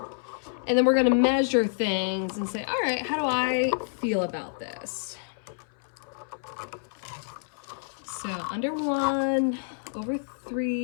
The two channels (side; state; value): right; silent; 59 dB below the other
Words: and then we're gonna measure things and say, all right, how do I feel about this? So under 1, over